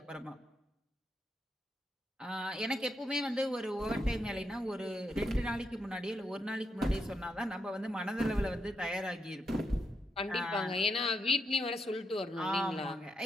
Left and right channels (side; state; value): both; normal; correlation 0.82